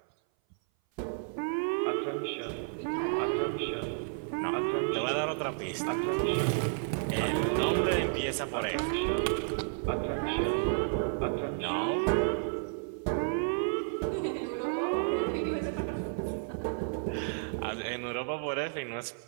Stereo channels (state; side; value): silent; left; 57 dB below the other